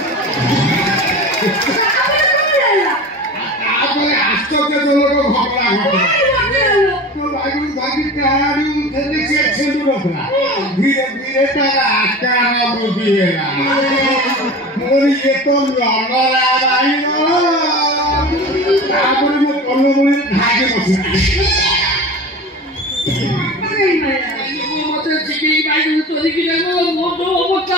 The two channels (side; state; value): both; normal; correlation 0.34